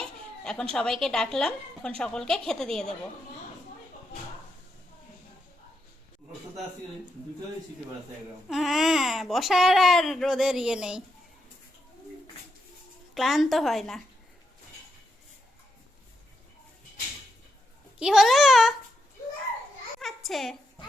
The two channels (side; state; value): both; normal; correlation 0.82